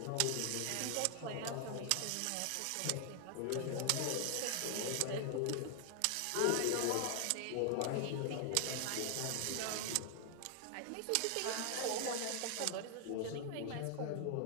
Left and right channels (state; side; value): different; both; correlation 0.00